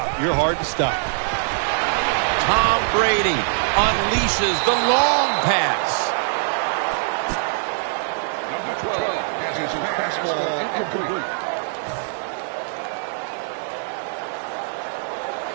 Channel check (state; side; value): silent; left; digital silence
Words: You're hard to stop. Tom Brady unleashes the long pass. Number 12 has his fastball incomplete.